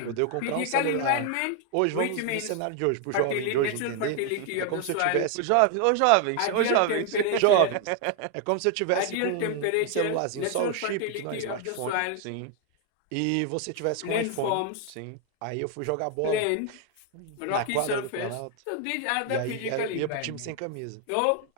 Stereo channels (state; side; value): different; both; correlation 0.00